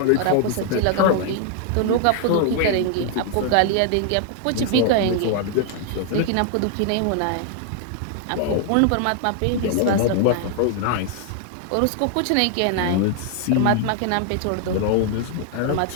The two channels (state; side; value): different; both; correlation 0.00